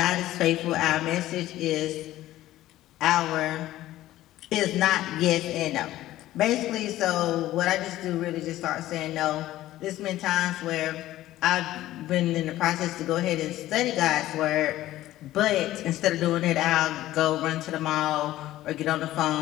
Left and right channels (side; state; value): right; quieter; 14.9 dB